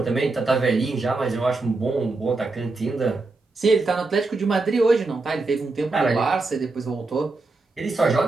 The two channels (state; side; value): quieter; left; 3.5 dB